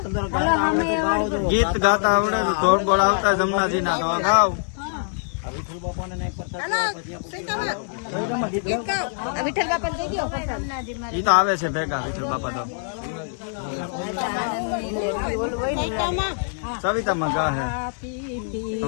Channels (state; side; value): silent; right; 63 dB below the other